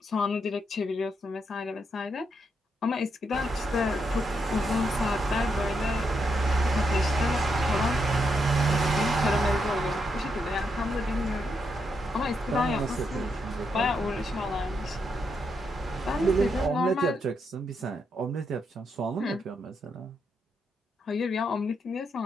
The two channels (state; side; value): normal; both; correlation 0.80